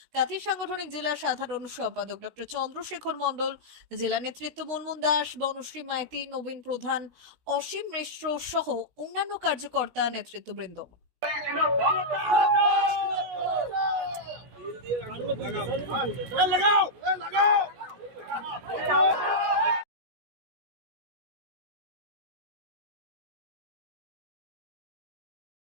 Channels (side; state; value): left; late; 16 ms